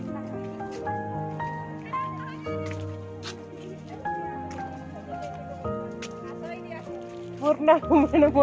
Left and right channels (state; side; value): identical; both; correlation 1.00